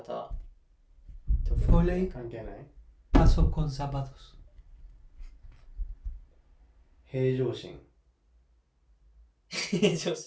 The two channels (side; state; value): both; identical; correlation 1.00